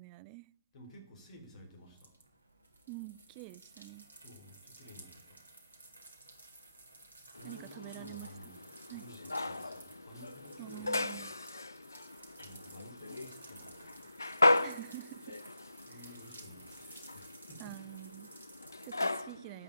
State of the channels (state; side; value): inverted; both; correlation -0.87